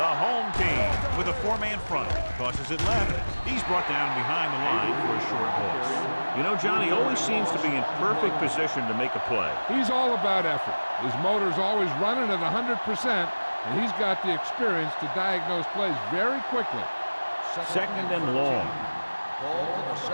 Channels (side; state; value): both; inverted; correlation -1.00